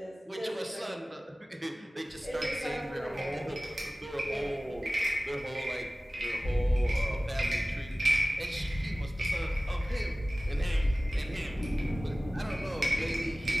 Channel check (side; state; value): both; normal; correlation 0.97